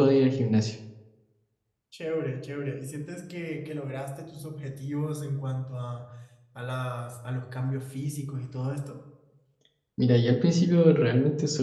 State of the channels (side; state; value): both; identical; correlation 1.00